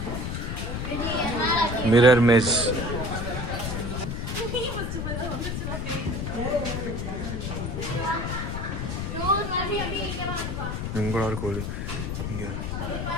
மிரர் மேஸ் உங்களோட கோழி இங்கே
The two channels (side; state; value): left; noise; rumble, 3 dB below the sound